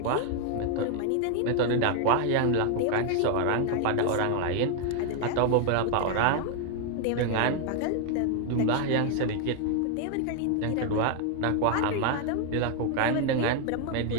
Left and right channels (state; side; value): different; both; correlation 0.00